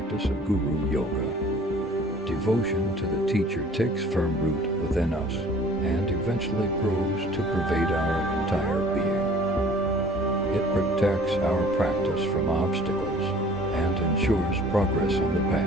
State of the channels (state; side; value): normal; both; correlation 0.51